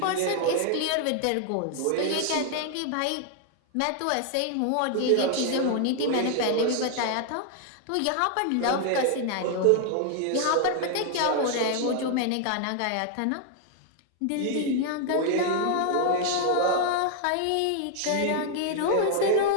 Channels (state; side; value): different; both; correlation 0.00